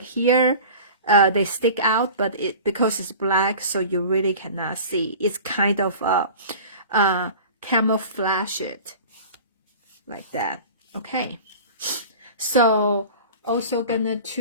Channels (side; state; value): both; inverted; correlation -0.39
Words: here, they stick out, but because it's black, so you really cannot see. It's kind of camouflage it like that. Okay, so also gonna